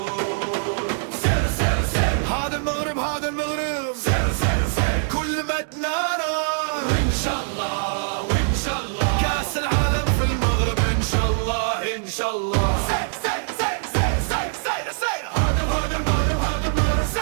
سير سير سير هذا المغرب هذا المغرب، سير سير سير كل ما تنارى وإن شاء الله وإن شاء الله كاس العالم في المغرب إن شاء الله إن شاء الله. سير سير سير سير سير سير سير هذا المغرب هذا المغرب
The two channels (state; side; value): silent; left; digital silence